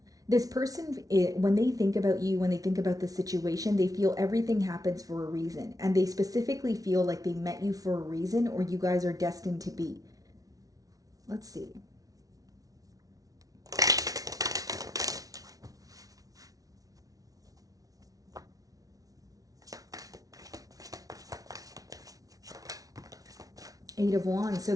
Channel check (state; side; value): late; left; 0.18 ms